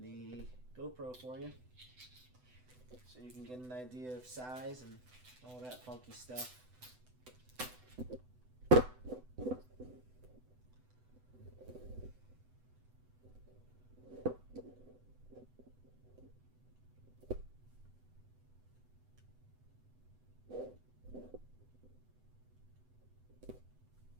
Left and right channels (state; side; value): late; left; 8.0 ms